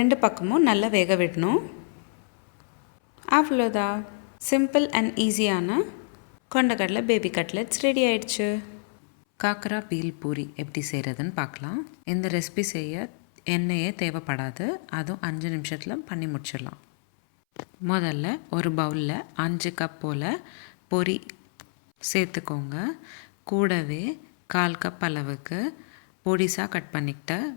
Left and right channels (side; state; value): right; silent; 60 dB below the other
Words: பக்கமும் நல்லா வேக விடணும். அவ்வளோதான், சிம்பிள் அண்ட் ஈஸியான கொண்டக்கடலை பேபி கட்லெட்ஸ் ரெடி ஆயிடுச்சு. காக்கரா பீல் பூரி எப்படி செய்கிறதுன்னு பார்க்கலாம். இந்த ரெசிபி செய்ய எண்ணெயே தேவைப்படாது. அதுவும் 5 நிமிஷத்தில் பண்ணி முடிச்சிடலாம். முதல்ல ஒரு பவுலில் 5 கப் போல் பொரி சேர்த்துக்கோங்க. கூடவே 1/4 கப் அளவுக்கு பொடிசாக கட் பண்ணிக்கிட்ட